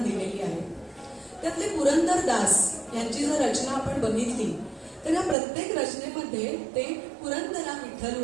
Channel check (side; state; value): left; drops out; at 5.4 s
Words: दिलेली आहे. त्यातले पुरंदरदास यांची जर रचना आपण बघितली तर या प्रत्येक रचनेमध्ये ते पुरंदरा